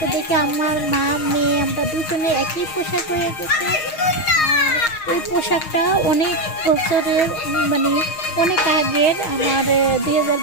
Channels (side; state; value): right; late; 6.5 ms